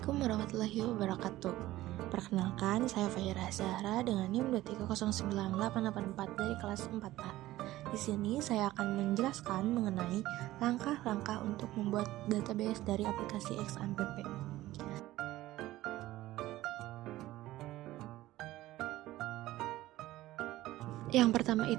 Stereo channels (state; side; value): quieter; left; 16.1 dB